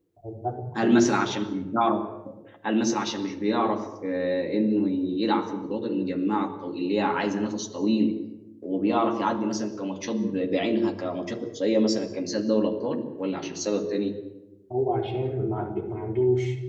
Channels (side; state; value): both; identical; correlation 1.00